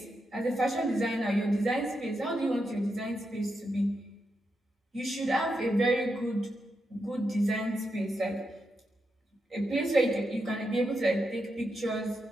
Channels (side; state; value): both; normal; correlation 0.85